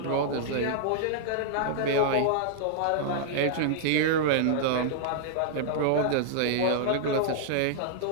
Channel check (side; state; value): both; different; correlation -0.01